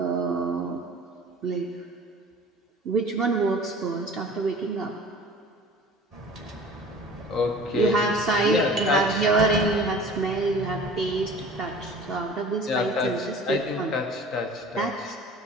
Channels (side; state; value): both; normal; correlation 0.44